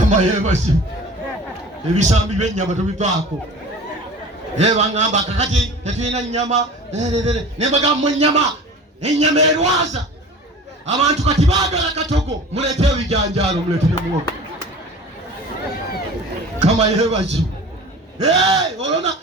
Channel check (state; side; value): normal; both; correlation 0.40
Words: yeebasi. Ebisambi by'ennyama tubivaako. Bangamba kakati tetulina nnyama. Ne bagamba ennyama erwaza. Abantu kati baagala katogo. Muleete ebijanjaalo muleete ne muwogo. Kama yeebasi. Olona